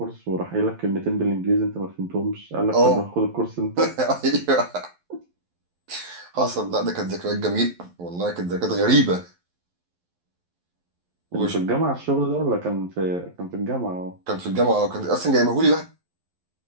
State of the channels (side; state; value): left; late; 11 ms